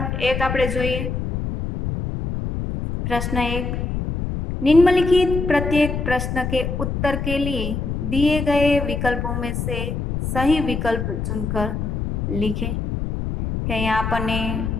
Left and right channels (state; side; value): noise; left; rumble, 3 dB below the sound